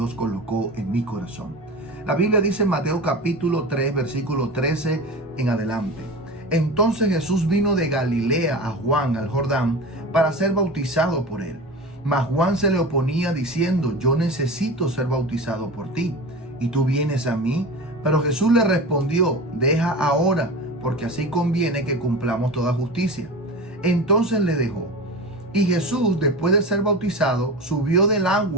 colocó en mi corazón. La Biblia dice en Mateo capítulo 3, versículo 13 en adelante. Entonces Jesús vino de Galilea a Juan al Jordán para ser bautizado por él. Mas Juan se le oponía diciendo: yo necesito ser bautizado por ti, y tú vienes a mí. Pero Jesús le respondió: deja ahora, porque así conviene que cumplamos toda justicia. Entonces le dejó. Y Jesús, después de ser bautizado, subió del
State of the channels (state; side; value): normal; both; correlation 0.30